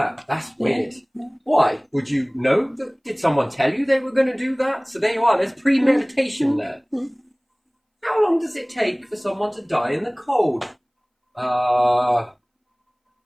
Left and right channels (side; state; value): both; identical; correlation 1.00